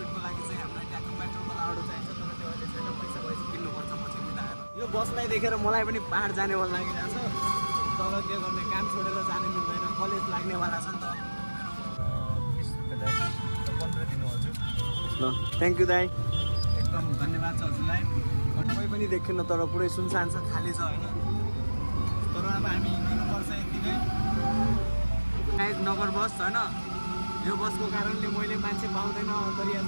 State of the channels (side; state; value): both; inverted; correlation -1.00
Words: लागि चाहिँ हामीलाई ट्याक्क पेट्रोलको लाउडो चाहिन्छ तर त्यो अहिले छैन पैसा भएपछि किन्नुपर्छ पछि मिलाएर यो बसलाई देखेर मलाई पनि पाहाड जाने मन लागिरहेको छ तर के गर्ने काम छोडेर जानु मिल्दैन कलेज लाग्नेवाला छ नि त 15 दिनु हजुर। ल थ्याङ्क यू दाइ एकदम धन्यवाद छ हजुरलाई। कोही पनि देखिन्न तर पुरै सुनसान छ खाली छ होइन तर अब हामी हिँड्नुपर्छ यति नै। गाइज नगर बस होइन यो बसको कारणले मैले मान्छे पाउँदैन अन्तरिया